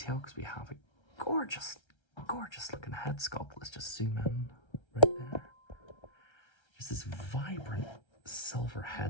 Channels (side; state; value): right; late; 1.3 ms